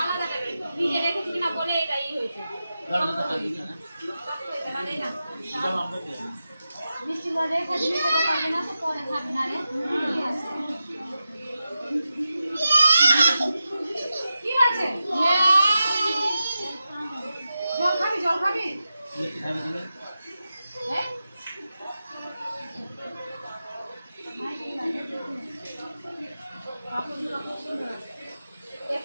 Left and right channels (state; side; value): inverted; both; correlation -0.91